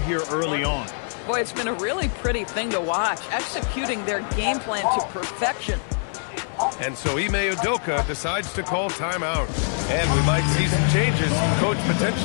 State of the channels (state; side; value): silent; right; digital silence